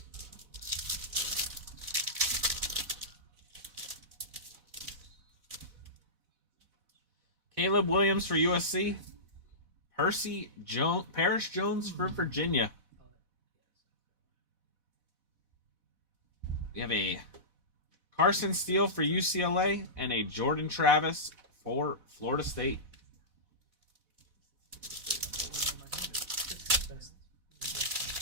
Caleb Williams for USC. Paris Jones for Virginia. We have a Carson Steele for UCLA and a Jordan Travis for Florida State.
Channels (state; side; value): late; left; 4.1 ms